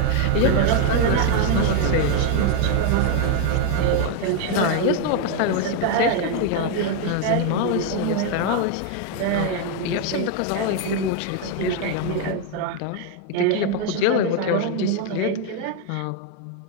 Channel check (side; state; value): both; different; correlation 0.01